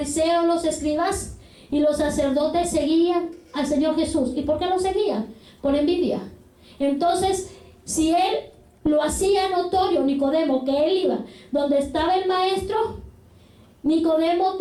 los escribas y los sacerdotes seguían al Señor Jesús. ¿Y por qué lo seguían? Por envidia. Entonces, si él lo hacía notorio, Nicodemo, que él iba donde estaba el maestro, Nicodemo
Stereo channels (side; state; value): both; identical; correlation 1.00